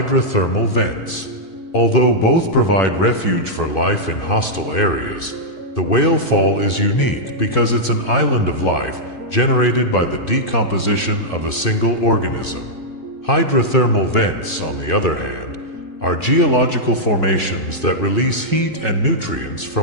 vents. Although both provide refuge for life in hostile areas, the whale fall is unique because it's an island of life generated by the decomposition of a single organism. Hydrothermal vents, on the other hand, are geological formations that release heat and nutrients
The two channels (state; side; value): late; right; 2.5 ms